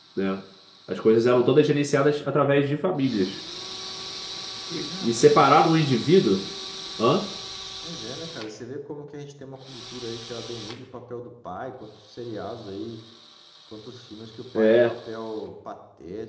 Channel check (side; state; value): both; identical; correlation 1.00